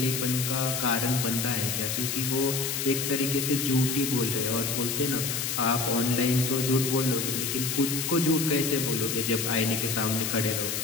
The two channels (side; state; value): left; noise; hiss, 1 dB below the sound